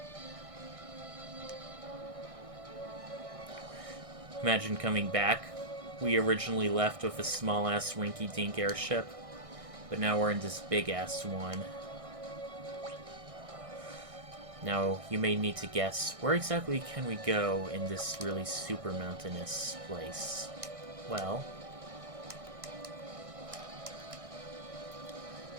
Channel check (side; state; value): left; late; 1.6 ms